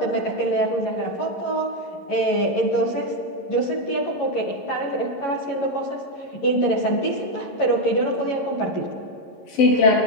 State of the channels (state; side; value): late; right; 11 ms